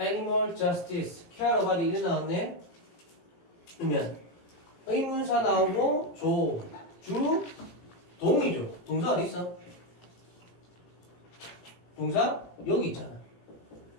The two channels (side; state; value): right; late; 18 ms